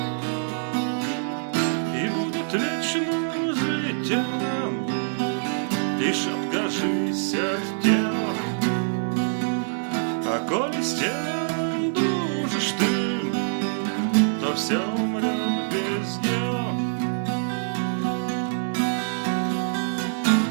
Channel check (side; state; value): left; silent; digital silence